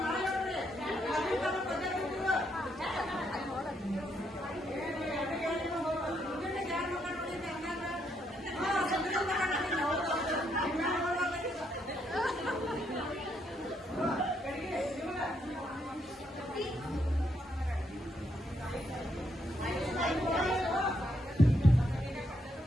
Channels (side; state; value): both; normal; correlation 0.76